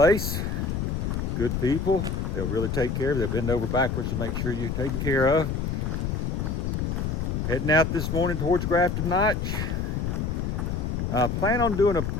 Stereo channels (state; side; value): noise; left; rumble, 1 dB below the sound